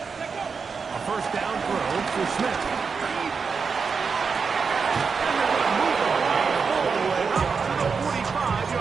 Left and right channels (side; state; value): left; quieter; 5.4 dB